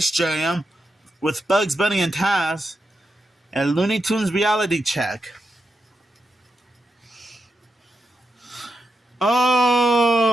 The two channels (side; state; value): both; normal; correlation 0.87